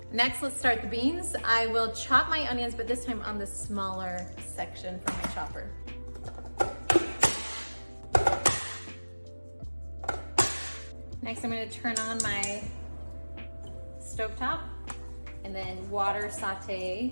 Next, let's start the beans. I will chop my onions, but this time on the smaller section from my chopper. Next, I'm gonna turn on my stovetop and then water saute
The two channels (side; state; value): both; inverted; correlation -1.00